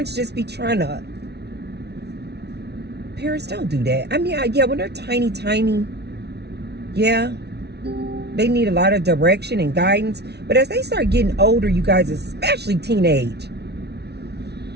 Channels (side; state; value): left; late; 0.49 ms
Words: just be trying to. Parents don't do that. I mean, yeah, when they're tiny, yeah, they need a lot of direction and guidance. But as they start getting older, you guys, especially teenage,